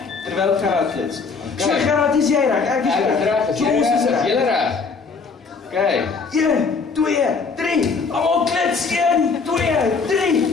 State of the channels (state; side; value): quieter; right; 4.9 dB